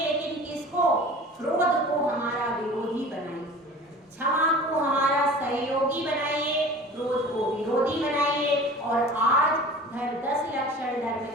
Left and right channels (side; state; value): both; normal; correlation 0.41